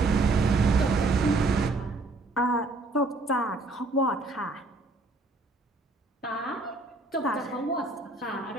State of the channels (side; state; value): left; quieter; 3.1 dB